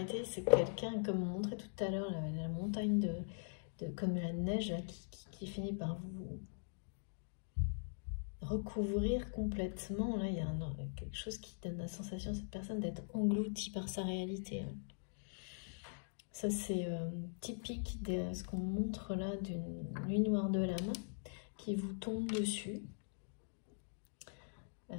C'est quelqu'un, comme on montrait tout à l'heure, la montagne comme la neige là, qui finit par vous recouvrir complètement. Là, il y a quelque chose qui donne la sensation à cette personne d'être engloutie par sa réalité. Hein. Ça, c'est typique de ce qu'on montre là d'une nuit noire de l'âme qui vous tombe dessus.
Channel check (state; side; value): silent; right; digital silence